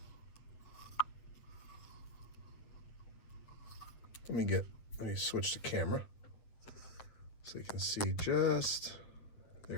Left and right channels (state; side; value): late; right; 8.3 ms